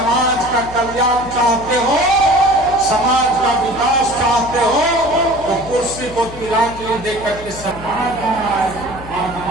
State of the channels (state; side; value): noise; left; hum, 15 dB below the sound